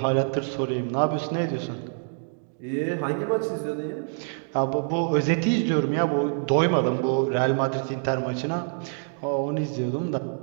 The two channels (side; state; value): left; silent; digital silence